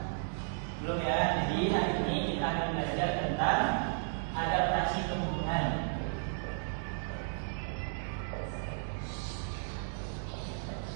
Belum ya. Jadi hari ini kita akan belajar tentang adaptasi tumbuhan.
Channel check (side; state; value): left; silent; digital silence